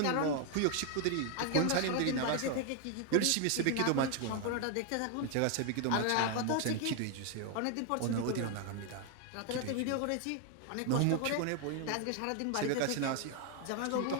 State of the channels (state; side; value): different; both; correlation 0.01